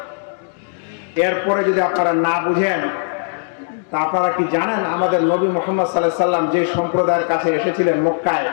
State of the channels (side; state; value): right; silent; digital silence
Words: এরপরে যদি আপনারা না বুঝেন, তা আপনারা কি জানেন আমাদের নবী মুহাম্মদ সাল্লাল্লাহু আলাইহি সাল্লাম যে সম্প্রদায়ের কাছে এসেছিলেন মক্কায়,